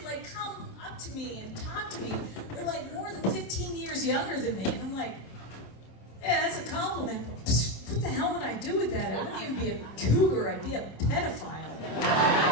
come up to me and talk to me are more than 15 years younger than me. And I'm like, yeah, that's a compliment. But what the hell would I do with that? I wouldn't even be a cougar, I'd be a pedophile.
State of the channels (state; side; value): late; right; 26 ms